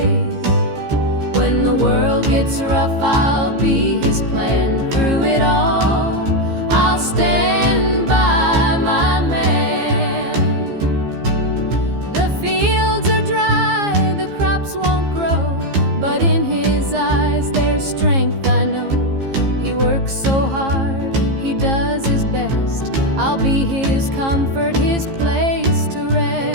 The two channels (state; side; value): late; left; 15 ms